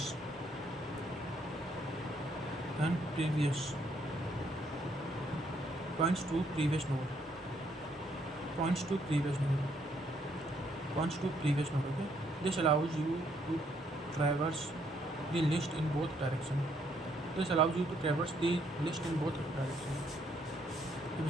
points to previous node, points to previous node, points to previous node. Okay, this allows you to traverse the list in both directions. This allows you to traverse the list in both directions.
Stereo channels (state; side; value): normal; both; correlation 0.70